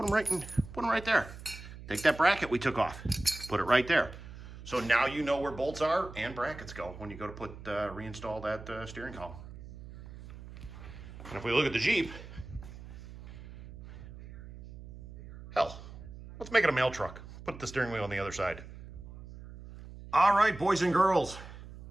them right there. Take that bracket we took off, put it right there. So now you know where bolts are and brackets go when you go to reinstall that steering column. And if we look at the Jeep, hell, let's make it a mail truck. Put the steering wheel on the other side. All right, boys and girls.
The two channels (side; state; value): right; noise; hum, 14 dB below the sound